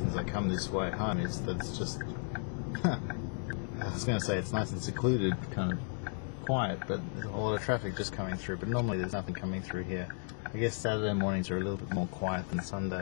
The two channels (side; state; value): right; silent; 55 dB below the other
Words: I come this way home is that it's just I was going to say it's nice and secluded, kind of quiet, but there's a lot of traffic just coming through, but normally there's nothing coming through here. I guess Saturday mornings are a little bit more quiet than